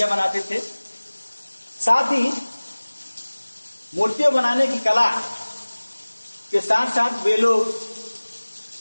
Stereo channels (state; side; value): inverted; both; correlation -1.00